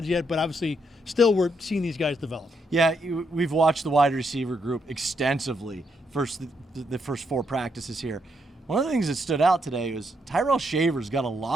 yet, but obviously still we're seeing these guys develop. Yeah, we've watched the wide receiver group extensively the first 4 practices here. One of the things that stood out today was Tyrell Shaver's got a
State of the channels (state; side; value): normal; both; correlation 0.77